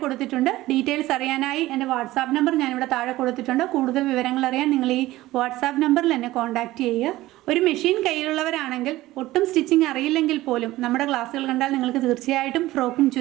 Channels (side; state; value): left; quieter; 16.9 dB